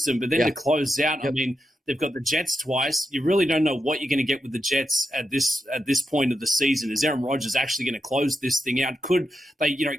but then to close out, I mean, they've got the Jets twice. You really don't know what you're going to get with the Jets at this point of the season. Is Aaron Rodgers actually going to close this thing out? Could they,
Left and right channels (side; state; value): both; normal; correlation 0.87